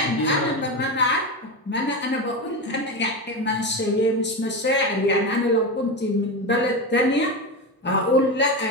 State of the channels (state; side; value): normal; both; correlation 0.18